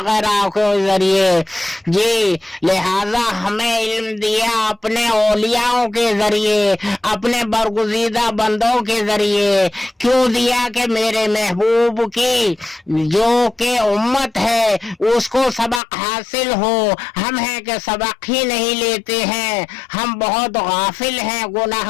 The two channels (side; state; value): right; drops out; at 15.8 s